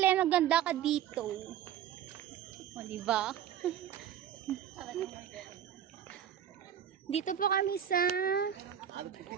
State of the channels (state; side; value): quieter; left; 9.9 dB